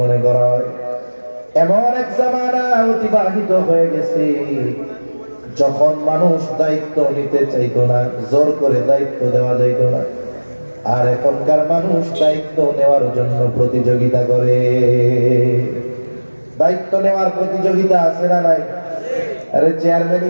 করা হয়। এমন এক জামানা অতিবাহিত হয়ে গেছে যখন মানুষ দায়িত্ব নিতে চাইতো না, জোর করে দায়িত্ব দেওয়া যাইতো না। আর এখনকার মানুষ দায়িত্ব নেওয়ার জন্য প্রতিযোগিতা করে। দায়িত্ব নেওয়ার প্রতিযোগিতা আছে না নাই? আরে চেয়ারম্যান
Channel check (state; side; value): inverted; both; correlation -1.00